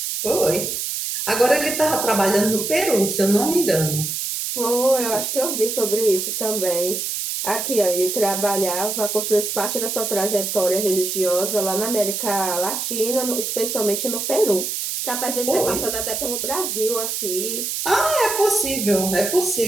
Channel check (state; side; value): noise; right; hiss, 3 dB below the sound